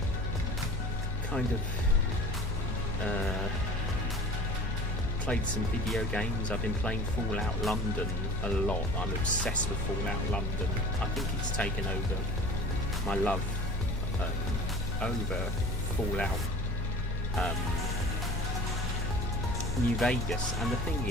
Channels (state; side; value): normal; both; correlation 0.42